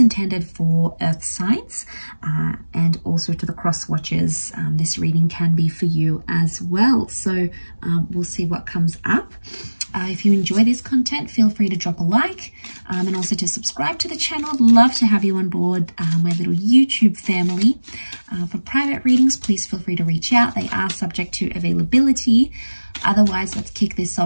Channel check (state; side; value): inverted; both; correlation -1.00